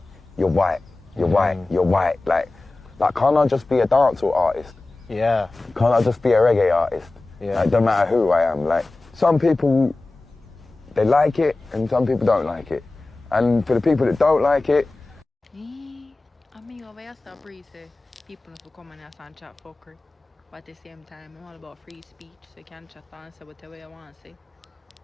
Like can't I just be a dancehall artist? Yeah. Can't I just be a reggae artist? Yeah. Like, don't matter who I am. Like some people, they like it and some people don't like it. And for the people that don't like it, people who come and chat fuckery. But at the same time, I'm all about free speech, so you can chat and say whatever you want to say.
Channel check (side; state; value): right; quieter; 3.1 dB